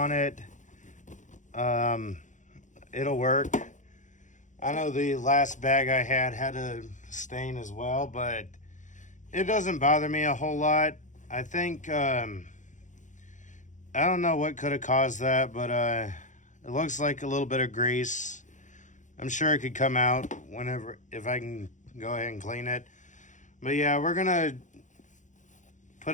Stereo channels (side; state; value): right; late; 0.36 ms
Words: it, it'll work. I know the last bag I had a stain as well, but it doesn't bother me a whole lot. I think, I don't know what could have caused that, but it looks like a little bit of grease. I'm sure it could come out whenever, if I can go ahead and clean it. But yeah, we're going to